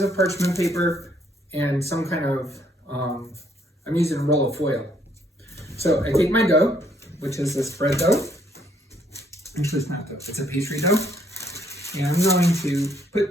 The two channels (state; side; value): normal; both; correlation 0.68